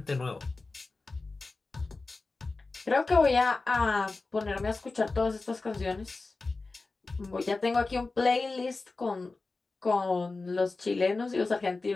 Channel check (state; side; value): quieter; right; 3.6 dB